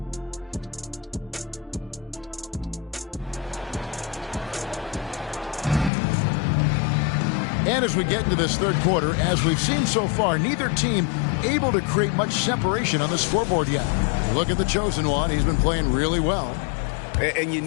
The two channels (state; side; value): drops out; right; at 5.9 s